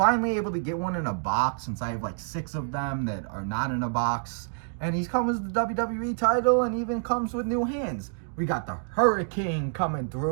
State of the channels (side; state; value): left; silent; digital silence